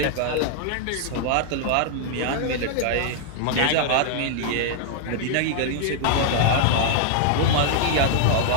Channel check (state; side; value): different; both; correlation 0.00